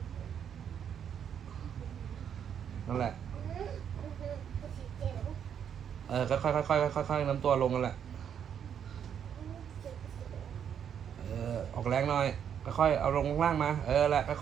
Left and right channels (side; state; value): left; quieter; 8.4 dB